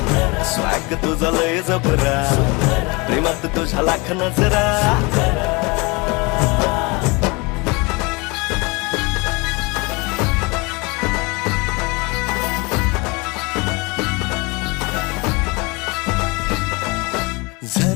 स्वॅग तुझा लय जबरा प्रेमात तुझा लाख नजरा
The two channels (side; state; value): right; quieter; 27.0 dB